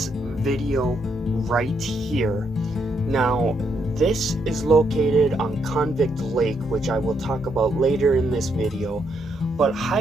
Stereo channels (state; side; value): normal; both; correlation 0.77